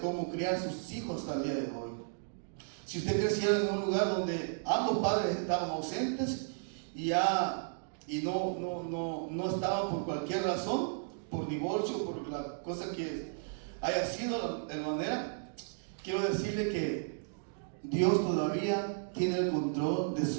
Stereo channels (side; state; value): left; silent; digital silence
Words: cómo criar sus hijos hasta el día de hoy. Si usted creciera en un lugar donde ambos padres estaban ausentes y no estaban por cualquier razón, por divorcio, por la cosa que haya sido de manera, quiero decirle que Dios todavía tiene el control de